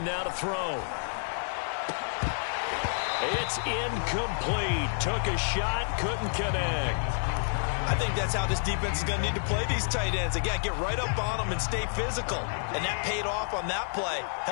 now to throw. It's incomplete. Took a shot, couldn't connect. I think that's how this defense is going to need to play these tight ends. They got to get right up on them and stay physical. And that paid off on that play,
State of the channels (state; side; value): silent; right; 58 dB below the other